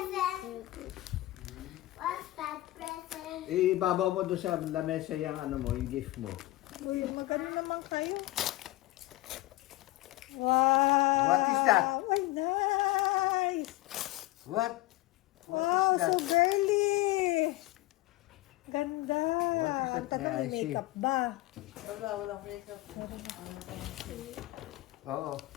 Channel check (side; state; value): right; quieter; 18.2 dB